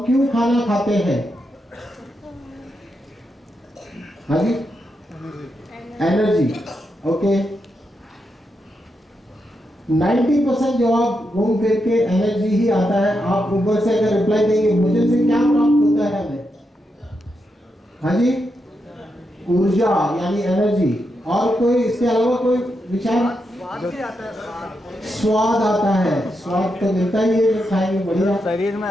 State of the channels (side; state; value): both; normal; correlation 0.84